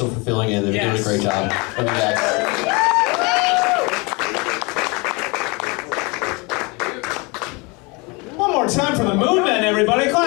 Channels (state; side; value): quieter; right; 28.2 dB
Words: for filling in. They're doing a great job. Love you guys. One more time for the Moon Men, everybody.